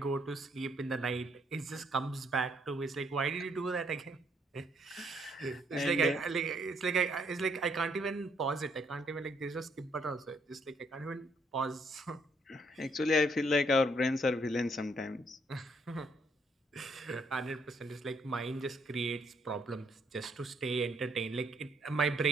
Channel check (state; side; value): normal; both; correlation 0.70